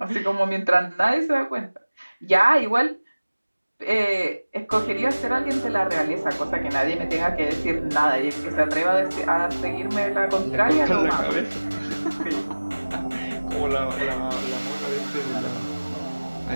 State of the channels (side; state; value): both; inverted; correlation -1.00